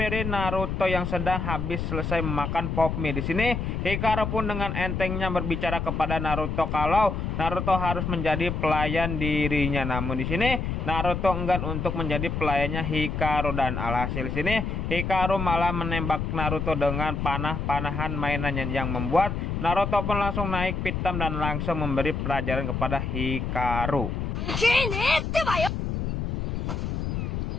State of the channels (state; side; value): noise; left; rumble, 2 dB below the sound